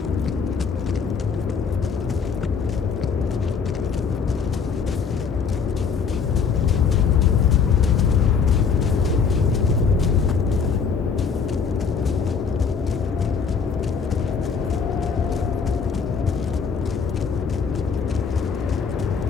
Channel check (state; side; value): quieter; right; 5.9 dB